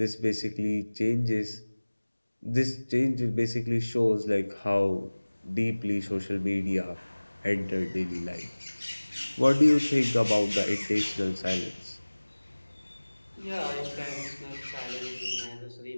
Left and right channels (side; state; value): both; inverted; correlation -1.00